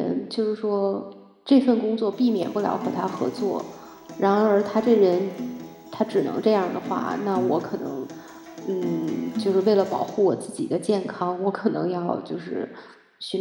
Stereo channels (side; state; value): both; identical; correlation 1.00